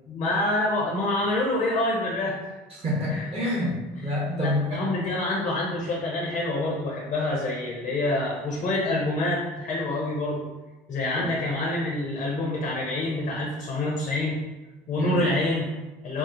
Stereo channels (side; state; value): both; normal; correlation 0.40